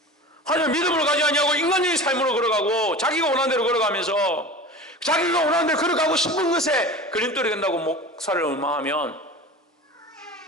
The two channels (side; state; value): both; normal; correlation 0.35